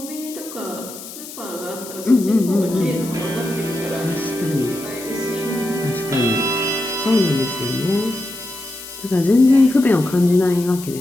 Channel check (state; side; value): noise; left; hiss, 13 dB below the sound